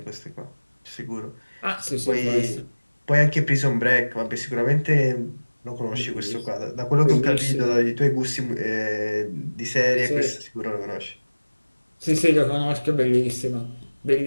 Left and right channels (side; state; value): both; inverted; correlation -1.00